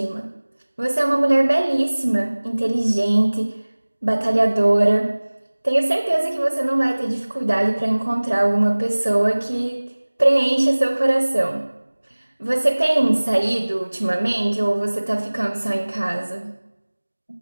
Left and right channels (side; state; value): both; inverted; correlation -1.00